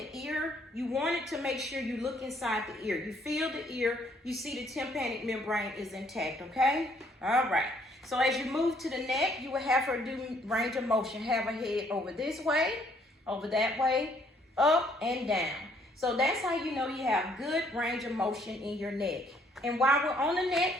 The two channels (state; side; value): normal; both; correlation 0.65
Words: ear, you want to make sure you look inside the ear. You feel the ear, you see the tympanic membrane is intact, okay? All right. So as you move to the neck, you will have her do range of motion. Have her head over this way, over that way, up and down. So that's how you know you have good range of motion in your neck. And while we're on the neck,